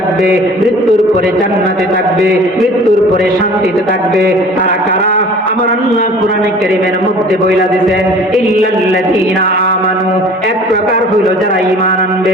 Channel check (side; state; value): both; normal; correlation 0.47